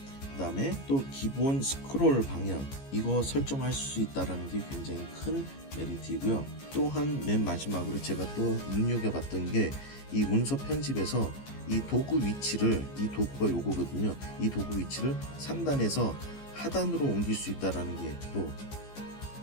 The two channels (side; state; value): right; late; 15 ms